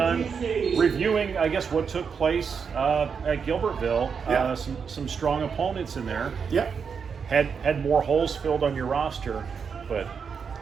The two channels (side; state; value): left; quieter; 6.2 dB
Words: Reviewing, I guess, what took place at Gilbertville. Yeah. Some strong opponents in there. Yeah. Had more holes filled on your roster, but